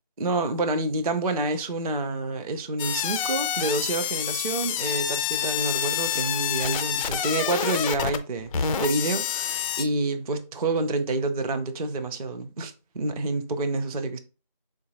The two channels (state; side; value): inverted; both; correlation -0.32